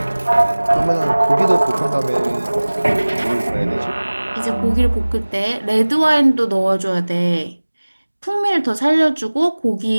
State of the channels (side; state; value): both; inverted; correlation -1.00